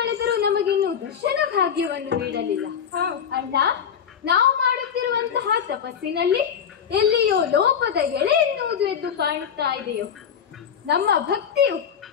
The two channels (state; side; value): quieter; right; 7.8 dB